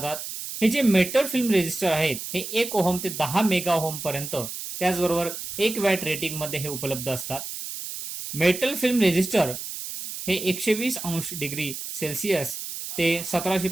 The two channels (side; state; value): right; noise; hiss, 8 dB below the sound